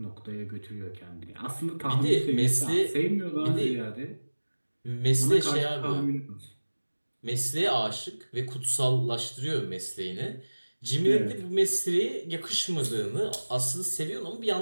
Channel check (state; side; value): inverted; both; correlation -1.00